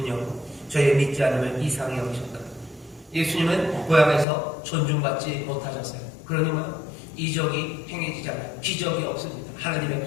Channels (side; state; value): right; drops out; at 4.2 s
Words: 저희의 믿지 않음을 이상히 여기셨다. 예수님은 고향에서 존중받지 못하셨어요. 그러니까 이적이 행해지지 않아요. 기적이 없습니다. 하나님의